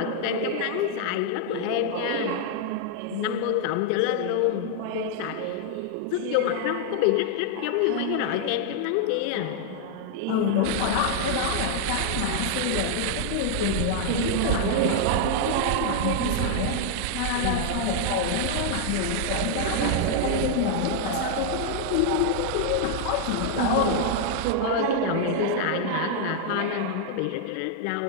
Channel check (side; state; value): both; different; correlation 0.00